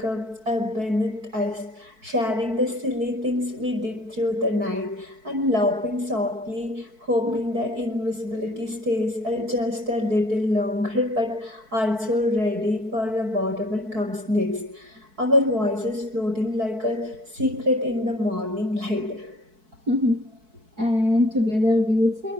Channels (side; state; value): left; late; 4.6 ms